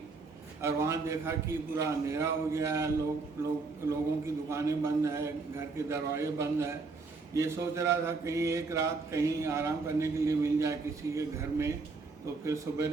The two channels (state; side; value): quieter; left; 4.0 dB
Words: और वहाँ देखा कि पूरा अंधेरा हो गया है। लोगों की दुकानें बंद है, घर के दरवाजे बंद है। ये सोच रहा था कहीं एक रात कहीं आराम करने के लिए मिल जाए किसी के घर में, तो फिर